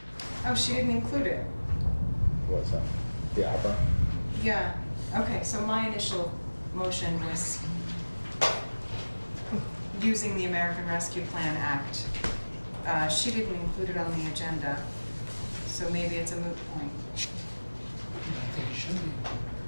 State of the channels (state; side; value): inverted; both; correlation -1.00